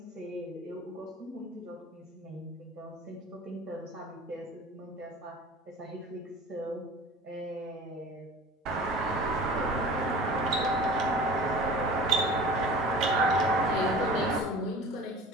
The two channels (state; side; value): normal; both; correlation 0.40